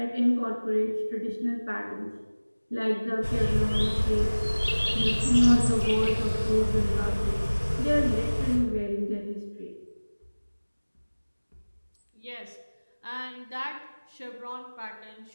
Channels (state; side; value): inverted; both; correlation -1.00